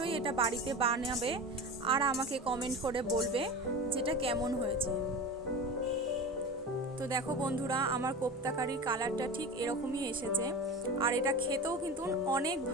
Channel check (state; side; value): normal; both; correlation 0.31